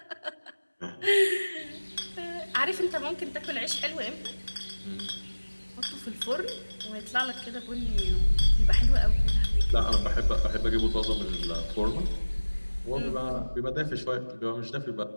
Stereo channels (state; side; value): inverted; both; correlation -1.00